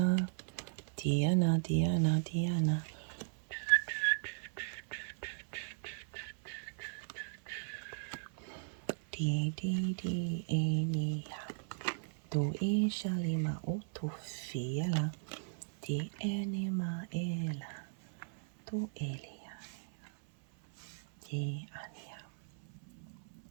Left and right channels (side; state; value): left; silent; 53 dB below the other